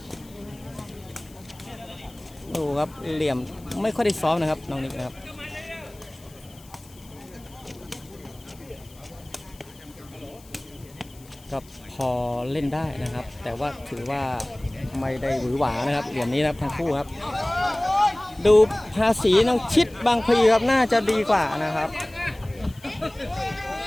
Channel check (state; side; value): noise; left; hiss, 24 dB below the sound